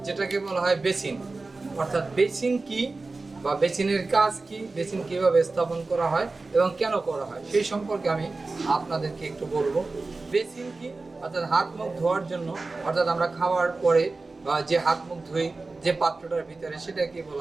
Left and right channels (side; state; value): left; quieter; 3.6 dB